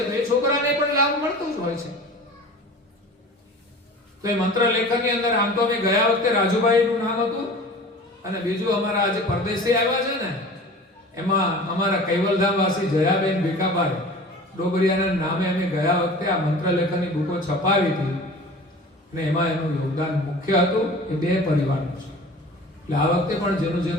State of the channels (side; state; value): both; normal; correlation 0.40